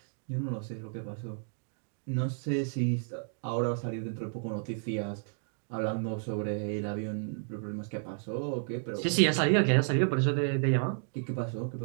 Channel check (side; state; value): left; silent; digital silence